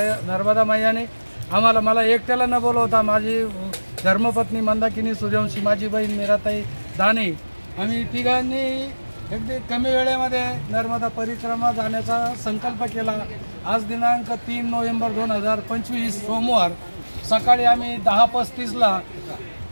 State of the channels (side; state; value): both; inverted; correlation -1.00